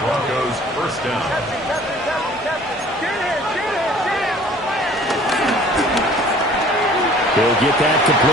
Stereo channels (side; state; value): both; normal; correlation 0.51